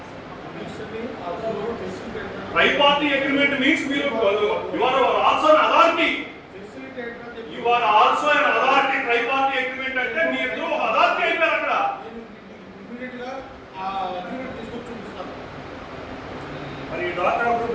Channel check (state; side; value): identical; both; correlation 1.00